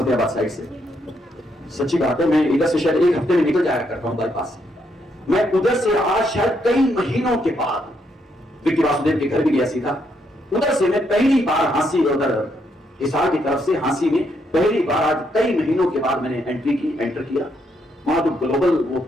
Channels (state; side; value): normal; both; correlation 0.76